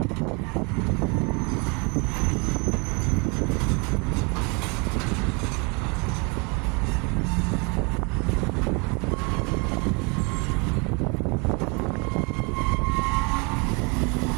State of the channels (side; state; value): left; quieter; 31.5 dB